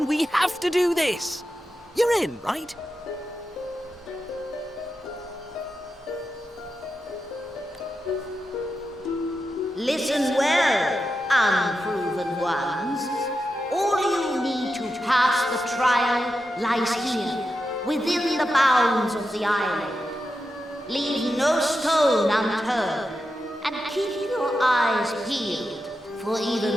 we have to do this. You're in, right? Listen well, unproven ones. All you need to pass the trial lies here, within the bounds of the island. Leave no stone unturned, and keep your eyes peeled for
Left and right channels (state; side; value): normal; both; correlation 0.89